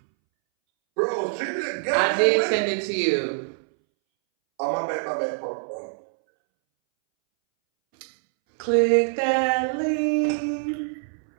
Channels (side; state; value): left; silent; 62 dB below the other